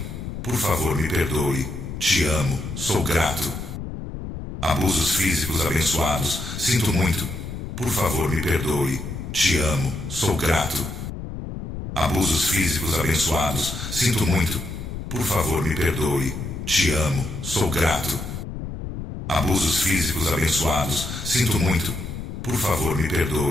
Por favor, me perdoe. Te amo, sou grato. Abusos físicos abençoados, sinto muito. Por favor, me perdoe. Te amo, sou grato. Abusos físicos abençoados, sinto muito. Por favor, me perdoe. Te amo, sou grato. Abusos físicos abençoados, sinto muito. Por favor, me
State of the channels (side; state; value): left; noise; rumble, 8 dB below the sound